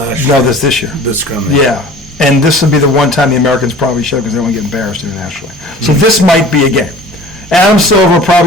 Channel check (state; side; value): normal; both; correlation 0.44